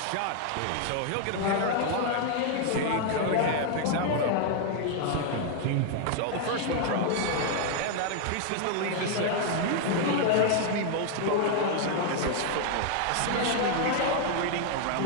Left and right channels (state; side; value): different; both; correlation 0.00